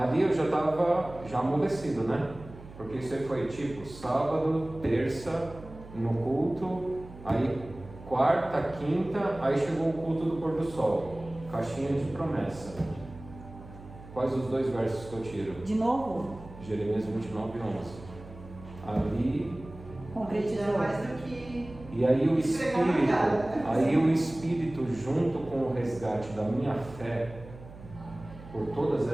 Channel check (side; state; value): right; noise; hum, 17 dB below the sound